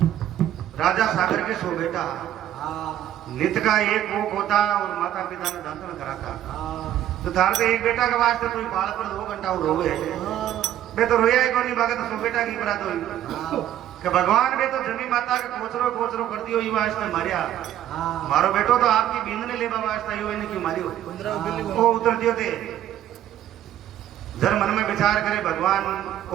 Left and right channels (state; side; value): quieter; left; 11.8 dB